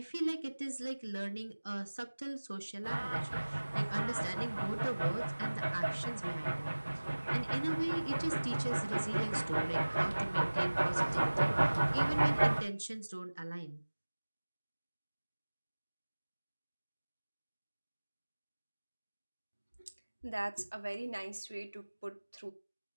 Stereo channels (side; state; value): both; inverted; correlation -1.00